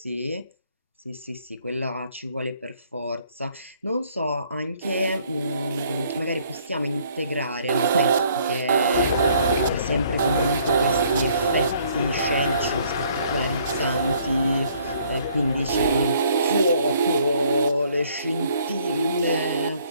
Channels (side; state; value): both; inverted; correlation -0.63